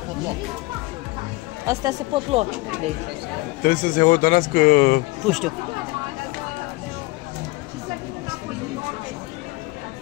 pot lua. Astea se pot lua de aici. Trebuie să se hotărască. Nu știu.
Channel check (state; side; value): quieter; right; 21.7 dB